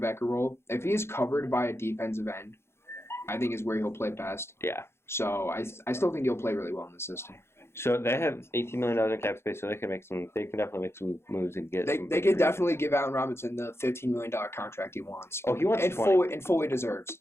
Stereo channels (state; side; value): late; right; 0.12 ms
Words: role. If he is covered by a defensive end, I think is where he'll play best. Yeah. So I still think he'll play really well in the system. So they have $18 million in cap space, so they can definitely make some moves and get. They could definitely give Allen Robinson the $15 million contract he wants. Oh, he wants 20. And fully deserves.